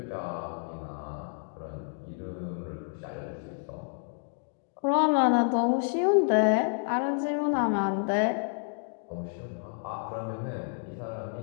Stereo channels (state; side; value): silent; right; 58 dB below the other